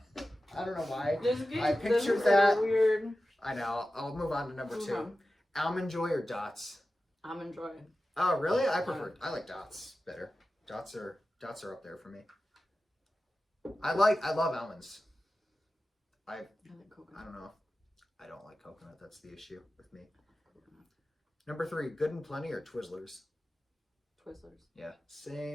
I don't know why I pictured that. Weird. I know. I'll move on to number 2. Almond Joy or Dots? Almond Joy. Oh, really? I like Dots better. Dots are up there for me. I love almonds. I like coconut. I don't know. I don't like coconut. That's the issue with me. Number 3, Good and Plenty or Twizzlers? Twizzlers. Yeah,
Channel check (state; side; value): normal; both; correlation 0.94